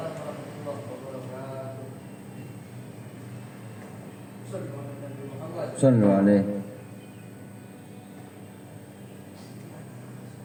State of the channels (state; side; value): identical; both; correlation 1.00